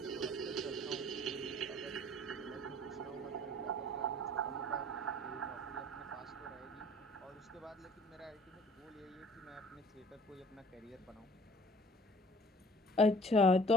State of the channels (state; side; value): normal; both; correlation 0.51